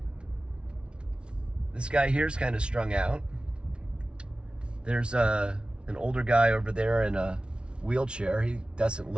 This guy here's kind of strung out. There's an older guy over there in a wheelchair. He doesn't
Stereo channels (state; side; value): late; left; 0.057 ms